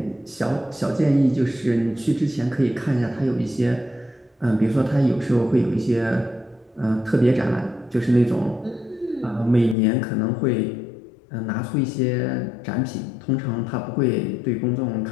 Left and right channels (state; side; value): drops out; right; at 9.8 s